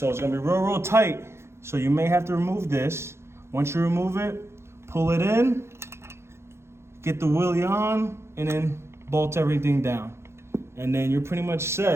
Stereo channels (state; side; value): late; left; 0.13 ms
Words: it's gonna be real, real tight. So you may have to remove this. Once you remove it, pull it in, get the wheelie on, and then bolt everything down. And then you're pretty much